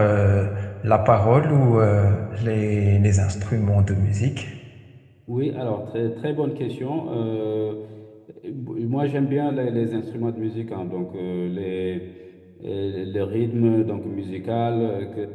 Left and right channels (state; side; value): identical; both; correlation 1.00